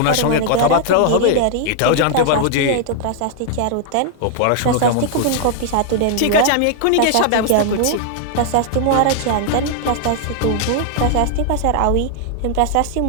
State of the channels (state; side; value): different; both; correlation 0.00